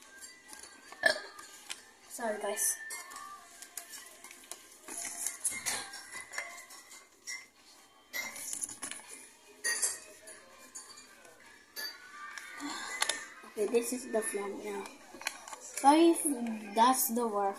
Sorry, guys. Okay, this is the flag now. Sorry if that's the war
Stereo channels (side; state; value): both; identical; correlation 1.00